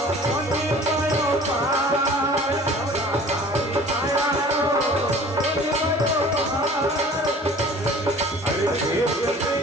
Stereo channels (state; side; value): normal; both; correlation 0.46